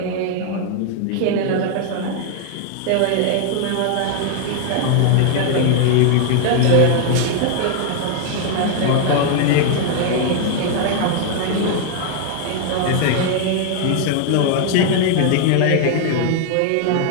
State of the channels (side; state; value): both; different; correlation 0.00